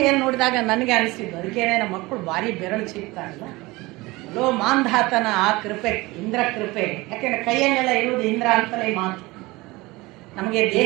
ನೋಡಿದಾಗ ನನಗೆ ಅನಿಸಿದ್ದು, ಅದಕ್ಕೇನೆ ನಮ್ಮ ಮಕ್ಕಳು ಭಾರಿ ಬೆರಳು ಚೀಪ್ತಾರಲ್ಲ, ಲೋ ಮಾಂಧಾತನ ಆ ಕೃಪೆ, ಇಂದ್ರ ಕೃಪೆ. ಯಾಕೆಂದ್ರೆ ಕೈಯನ್ನೆಲ್ಲ ಇರುವುದು ಇಂದ್ರ ಅಂತಲೇ ಮಾತು. ನಮಗೆ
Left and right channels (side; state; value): left; quieter; 21.6 dB